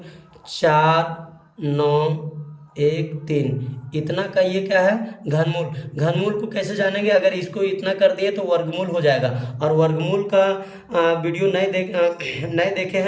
4 9 1 3, इतना का ये क्या है, घनमूल। घनमूल को कैसे जानेंगे, अगर इसको इतना कर दिए तो वर्गमूल हो जाएगा। और वर्गमूल का वीडियो नहीं देखे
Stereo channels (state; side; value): identical; both; correlation 1.00